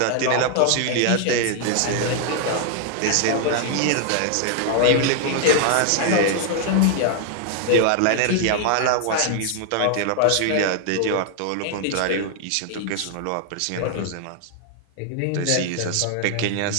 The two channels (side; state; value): both; different; correlation 0.00